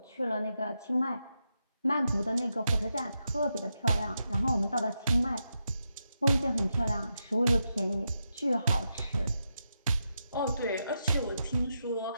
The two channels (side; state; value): both; inverted; correlation -0.85